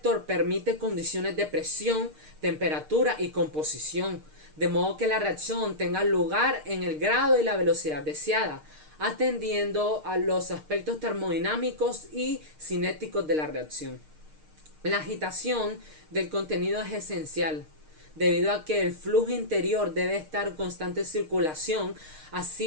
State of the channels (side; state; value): left; late; 6.5 ms